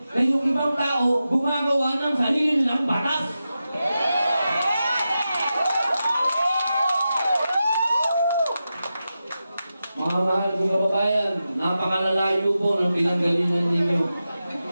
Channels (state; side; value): inverted; both; correlation -0.91